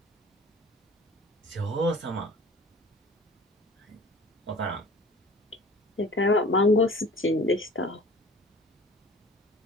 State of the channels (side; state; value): both; normal; correlation 0.44